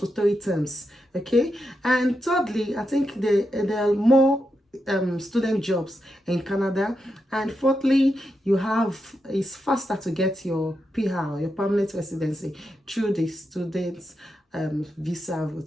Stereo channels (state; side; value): normal; both; correlation 0.85